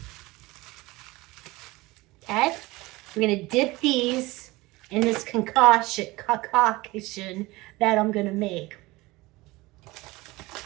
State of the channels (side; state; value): left; quieter; 21.0 dB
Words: Okay, we're gonna dip these in this concoction that I'm gonna make.